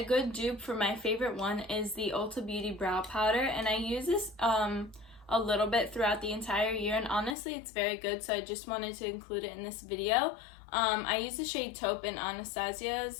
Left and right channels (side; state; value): right; drops out; at 7.4 s